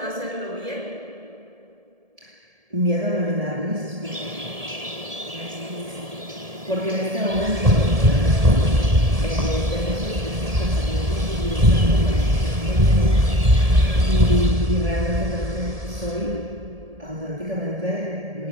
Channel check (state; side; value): late; left; 1.7 ms